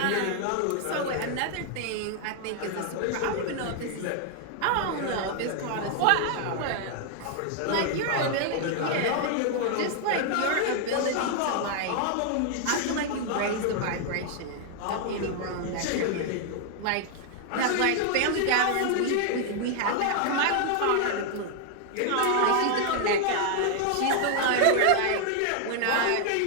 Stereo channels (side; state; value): both; different; correlation 0.00